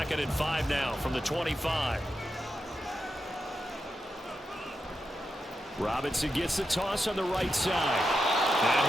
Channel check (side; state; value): both; normal; correlation 0.87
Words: and 5 now from the 25. Robinson gets the toss on the right side.